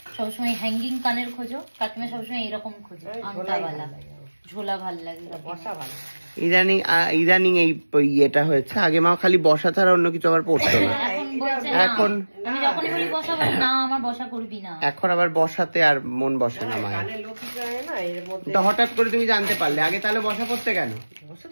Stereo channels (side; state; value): both; inverted; correlation -1.00